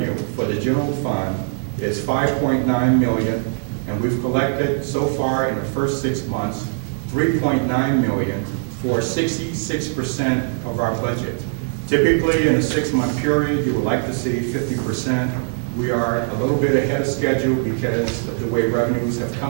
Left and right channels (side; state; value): left; silent; 62 dB below the other